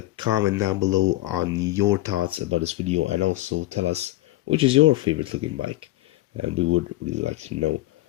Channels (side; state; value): right; quieter; 17.0 dB